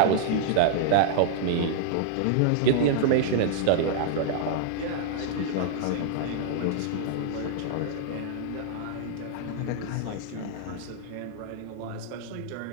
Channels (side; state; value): both; different; correlation -0.01